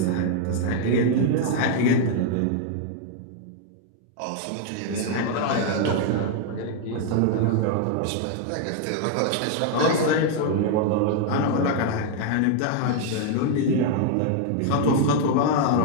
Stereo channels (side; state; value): both; different; correlation 0.00